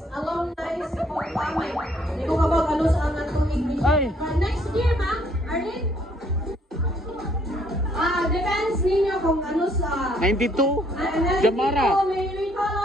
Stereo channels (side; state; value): both; normal; correlation 0.65